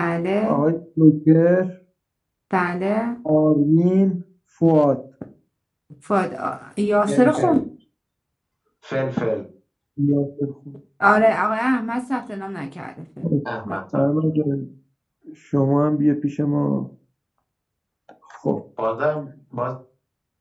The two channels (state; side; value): identical; both; correlation 1.00